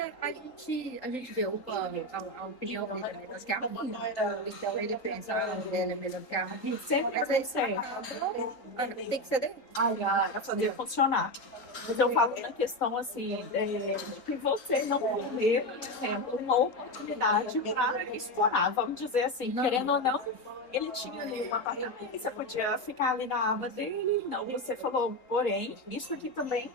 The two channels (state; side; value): late; right; 3.8 ms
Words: a gente vê a opinião dele é melhor que a minha. Então ele pensa, a mulher é melhor que a minha. Sempre Mas vai aí ser. tem que ser dele. Para fazer funcionar. Mas eu falo na questão assim, que você não perder, por exemplo, uma oportunidade para explorar, vamos dizer assim, querendo ou não, ele tinha ali um apartamento, você podia ficar ali na aba dele, não, você falou, porém, isso aqui também